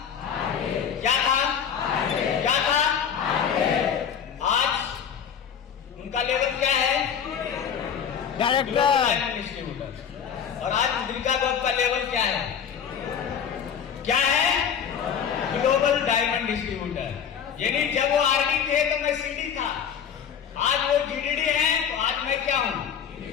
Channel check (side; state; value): right; quieter; 7.8 dB